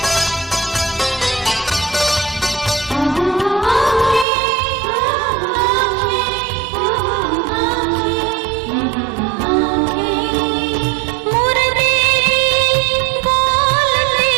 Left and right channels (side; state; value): left; drops out; at 4.2 s